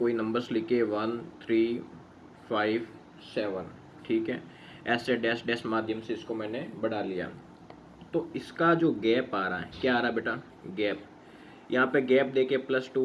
नंबर्स लिखे 1 3 5 7, ठीक है, ऐसे डैश डैश माध्यम से इसको मैंने बढ़ा लिया। तो इसका जो गैप आ रहा है, क्या आ रहा है बेटा? गैप। यहाँ पे गैप देके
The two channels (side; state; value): both; identical; correlation 1.00